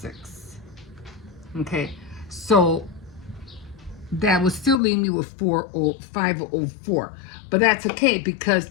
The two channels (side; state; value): right; drops out; at 4.8 s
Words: Okay, so that would still leave me with 504, but that's okay because